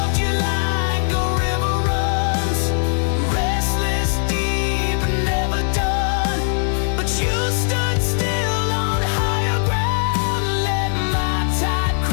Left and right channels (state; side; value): silent; right; digital silence